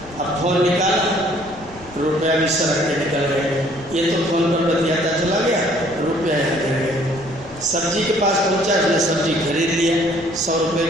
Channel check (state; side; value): noise; left; rumble, 21 dB below the sound